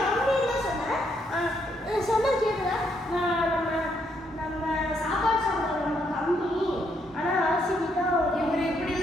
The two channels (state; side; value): normal; both; correlation 0.74